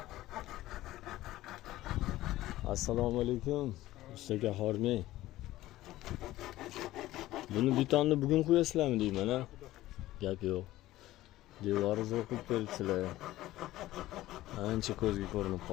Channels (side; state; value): right; quieter; 15.9 dB